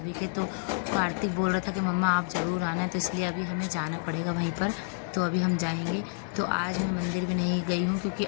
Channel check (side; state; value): right; silent; digital silence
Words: के। तो कार्तिक बोल रहा था कि मम्मा आप ज़रूर आना, तो इसलिए अभी हमें जाना पड़ेगा वहीं पर। तो अभी हम जाएंगे। तो आज मैं मंदिर भी नहीं गई हूँ, क्योंकि